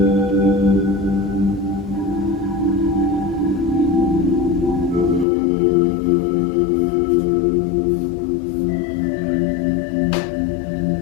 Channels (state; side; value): drops out; right; at 5.2 s